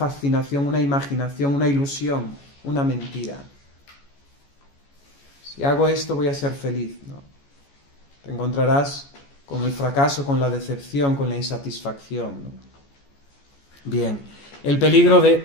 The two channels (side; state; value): right; late; 14 ms